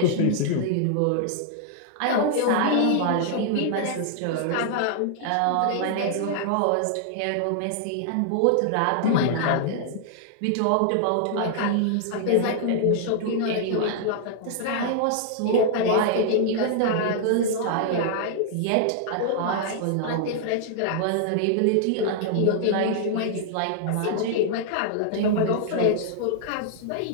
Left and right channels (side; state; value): both; different; correlation -0.01